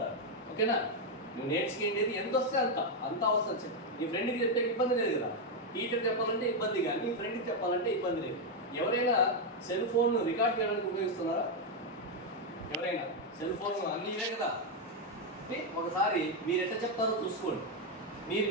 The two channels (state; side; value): normal; both; correlation 0.03